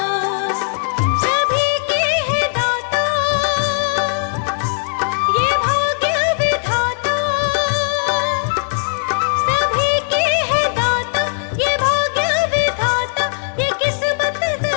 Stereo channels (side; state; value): right; silent; digital silence